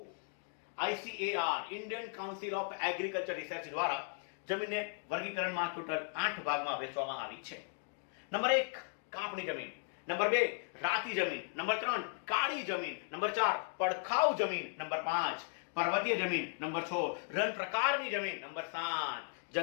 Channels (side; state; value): right; silent; 53 dB below the other